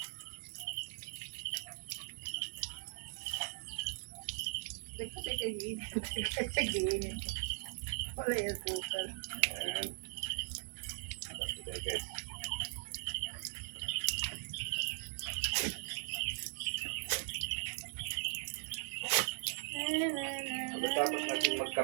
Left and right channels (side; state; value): left; silent; 51 dB below the other